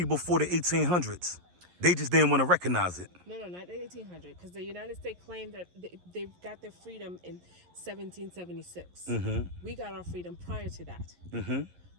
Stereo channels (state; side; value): late; left; 11 ms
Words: before the 1800s. They just didn't want to recognize it. No, not the 1800, because the United States claimed that they got their freedom in 1776. We got our freedom prior to that.